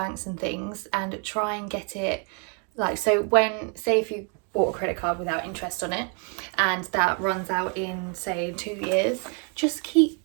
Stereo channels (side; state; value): left; quieter; 38.3 dB